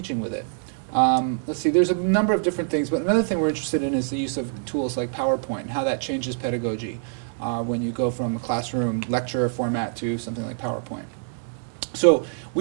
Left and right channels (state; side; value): silent; left; digital silence